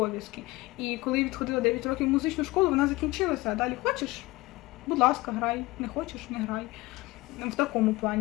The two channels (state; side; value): quieter; right; 20.7 dB